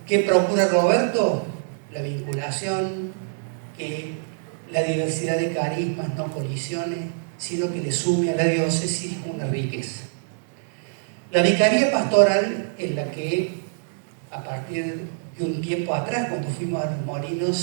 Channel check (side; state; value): left; silent; digital silence